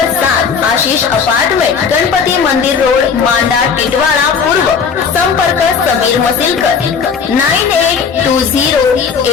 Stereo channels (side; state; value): right; quieter; 6.1 dB